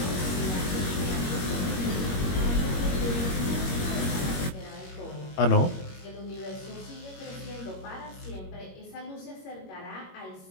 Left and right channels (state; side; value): late; right; 21 ms